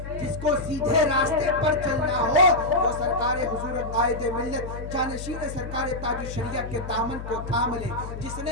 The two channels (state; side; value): noise; left; hum, 9 dB below the sound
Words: جس کو سیدھے راستے پر چلنا ہو وہ سرکار حضور قائد ملت جانشین سرکار تاج الشریعہ کے دامن کو تھام لے. جس